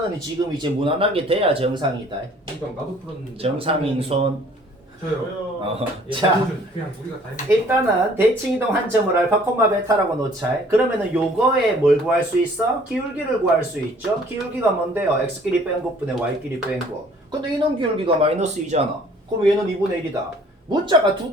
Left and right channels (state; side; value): normal; both; correlation 0.56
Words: 지금 이제 무난하게 돼야 정상이다. 이거 나도 풀었는데. 정상인 손. 저요. 예, 자 그냥 우리가 다 했는 일단은 대칭이동 한 점을 알파 콤마 베타라고 놓자. 그러면은 요거에 뭘 구할 수 있어? 기울기를 구할 수 있죠. 기울기가 뭔데요? x끼리 뺀 것분의 y끼리 뺀 거. 근데 이놈 기울기가 마이너스 2잖아. 그럼 얘는 2분의 1이다. 문자가 두